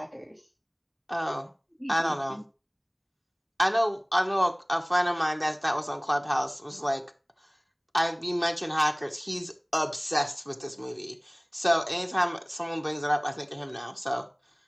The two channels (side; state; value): both; identical; correlation 1.00